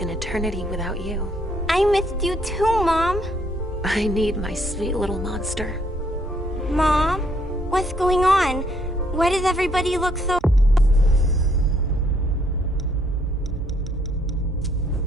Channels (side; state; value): both; normal; correlation 0.68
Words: an eternity without you. I missed you too, Mom. I need my sweet little monster. Mom? What's going on? Why does everybody look so...